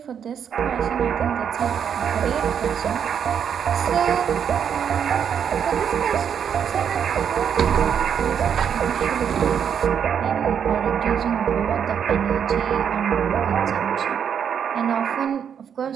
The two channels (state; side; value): quieter; left; 8.0 dB